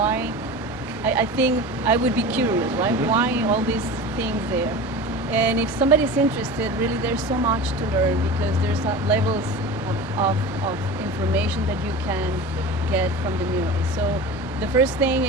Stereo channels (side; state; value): both; normal; correlation 0.33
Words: I think I would be curious, right? Mm-hmm. Why all these things there? And if somebody's interested, really there's so much to learn because there's levels of information that you can get from the mural. So the first thing